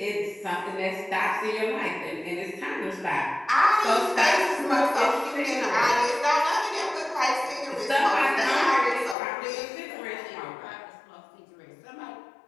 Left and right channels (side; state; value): right; drops out; at 9.2 s